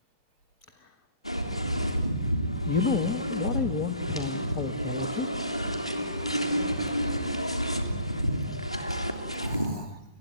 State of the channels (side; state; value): both; inverted; correlation -0.55